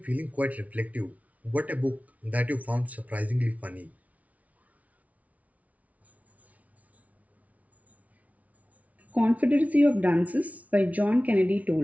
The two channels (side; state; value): left; late; 0.069 ms